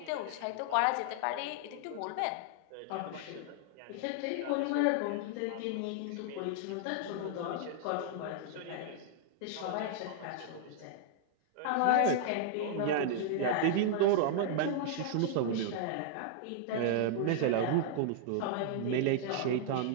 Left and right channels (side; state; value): both; different; correlation -0.01